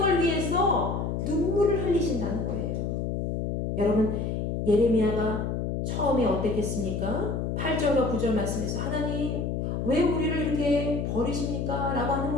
위해서 눈물을 흘리신다는 거예요. 여러분, 예레미야가 처음에 어땠겠습니까? 8절과 9절 말씀에서 하나님 왜 우리를 이렇게 버리십니까? 라고 하는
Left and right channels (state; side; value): noise; left; hum, 2 dB below the sound